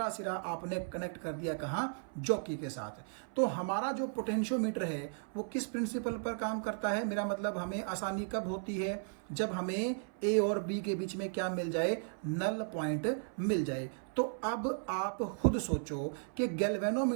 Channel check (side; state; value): left; silent; 54 dB below the other